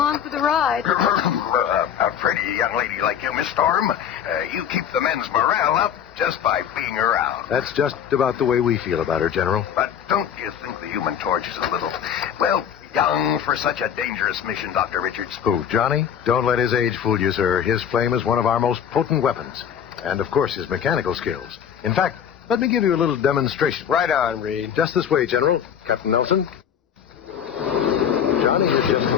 for the ride. A pretty young lady like you, Miss Storm. You keep the men's morale up just by being around. That's just about the way we feel about her, General. But don't you think the Human Torch is a little, well, young for such a dangerous mission, Dr. Richards? Who, Johnny? Don't let his age fool you, sir. His flame is one of our most potent weapons. And, of course, his mechanical skills. In fact, let me give you a little demonstration. Right on, Reed. Just this way, General. Captain Nelson. Johnny has just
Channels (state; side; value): quieter; right; 8.7 dB